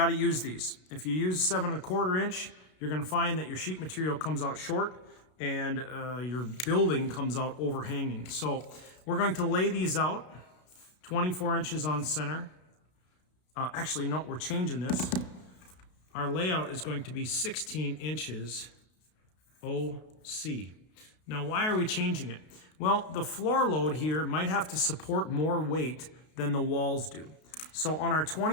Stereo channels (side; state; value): right; late; 33 ms